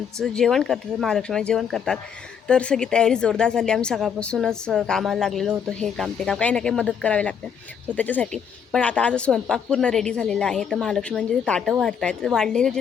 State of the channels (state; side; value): quieter; right; 7.4 dB